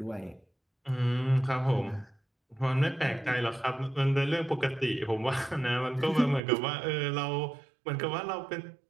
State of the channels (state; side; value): drops out; left; at 6.4 s